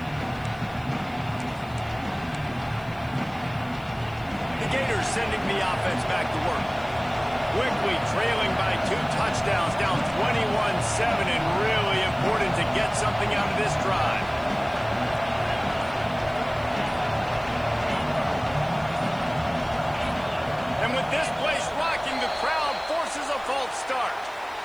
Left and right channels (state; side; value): noise; left; hiss, 27 dB below the sound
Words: Gators sending the